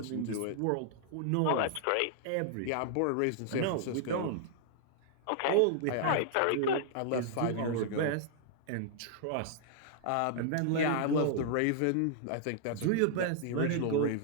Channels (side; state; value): both; different; correlation -0.01